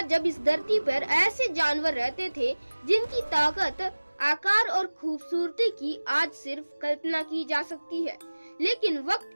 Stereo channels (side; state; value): both; inverted; correlation -1.00